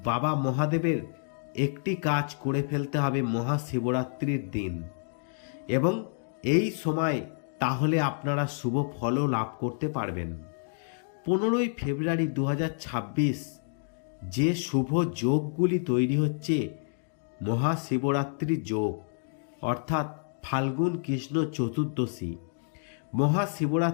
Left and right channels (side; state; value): right; silent; digital silence